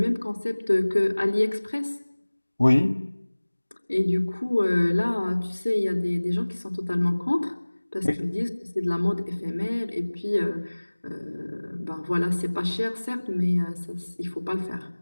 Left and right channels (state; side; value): inverted; both; correlation -1.00